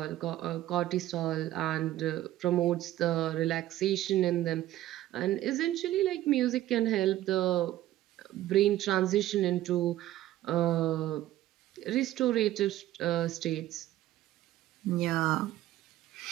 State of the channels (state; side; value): quieter; left; 14.1 dB